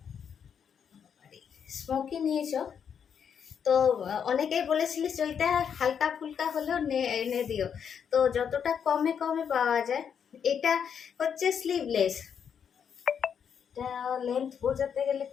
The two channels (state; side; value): quieter; right; 7.6 dB